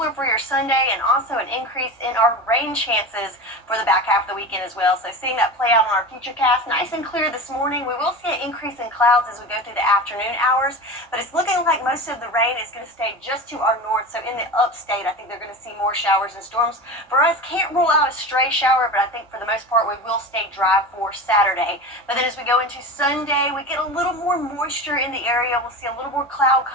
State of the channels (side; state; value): both; normal; correlation 0.29